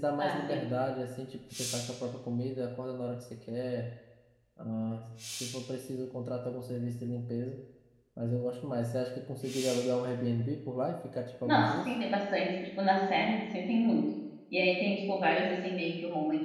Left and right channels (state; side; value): identical; both; correlation 1.00